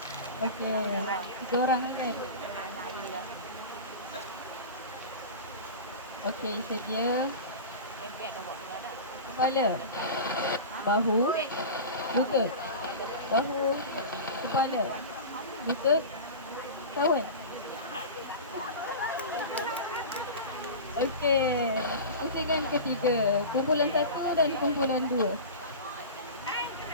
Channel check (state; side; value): inverted; both; correlation -0.30